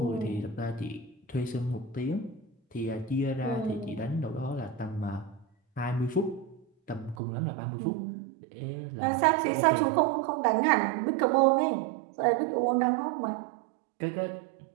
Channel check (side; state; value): left; drops out; at 7.2 s